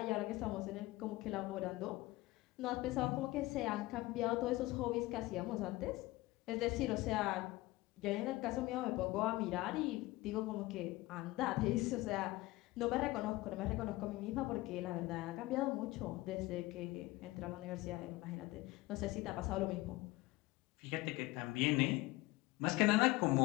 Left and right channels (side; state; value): right; quieter; 19.5 dB